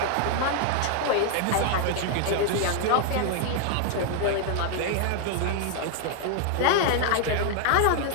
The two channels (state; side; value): different; both; correlation 0.00